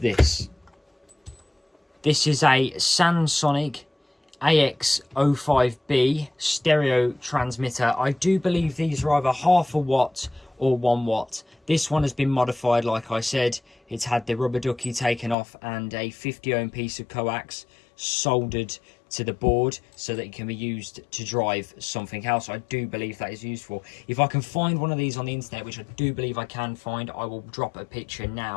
This is a Sansonic AX05B stereo transmitter. I do believe these are either half a watt or 1 watt. This one has been modified, like I said. It's had the rubber ducky taken off and a 50 ohm piece of coax soldered to the board so that it can be used to drive something else. I do believe that is useful. If I can find one of these on the internet, which I do believe I can find, I will drop a picture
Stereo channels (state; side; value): drops out; right; at 15.4 s